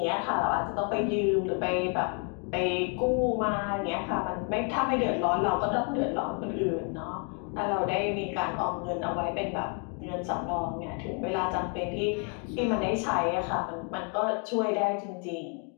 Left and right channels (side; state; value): right; quieter; 39.4 dB